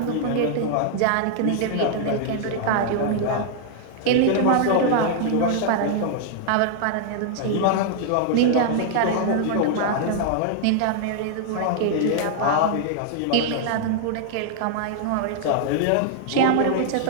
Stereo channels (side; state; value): both; different; correlation -0.01